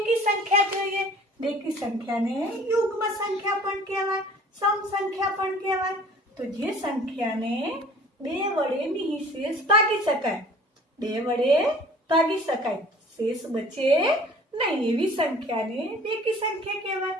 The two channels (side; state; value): both; normal; correlation 0.48